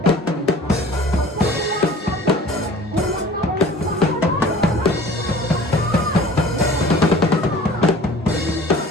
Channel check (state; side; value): normal; both; correlation 0.45